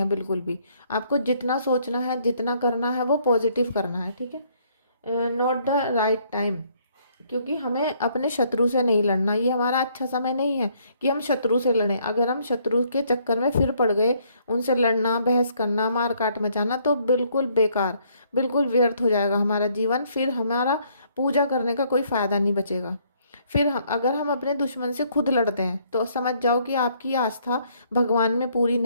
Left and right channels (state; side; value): inverted; both; correlation -0.67